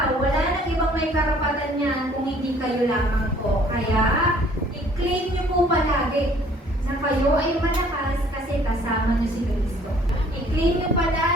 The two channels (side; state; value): both; normal; correlation 0.57